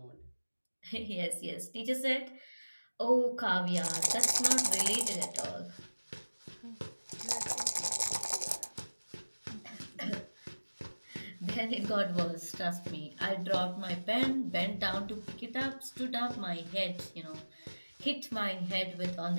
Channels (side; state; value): both; inverted; correlation -1.00